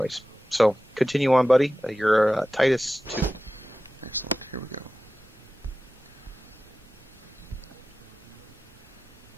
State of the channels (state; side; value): normal; both; correlation 0.94